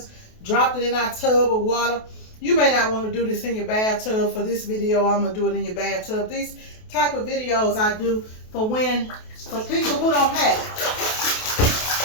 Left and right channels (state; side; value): late; right; 28 ms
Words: dropped it in our tub of water. You may not want to do this in your bathtub. For this video, I'm going to do it in your bathtub. These type of videos I do for people who don't have it.